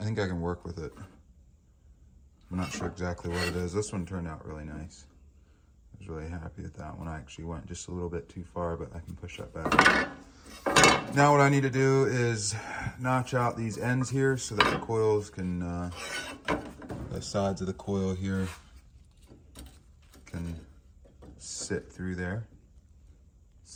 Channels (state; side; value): identical; both; correlation 1.00